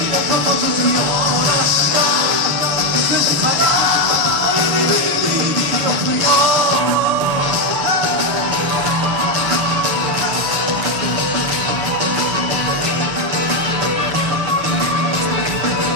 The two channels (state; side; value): late; left; 6.6 ms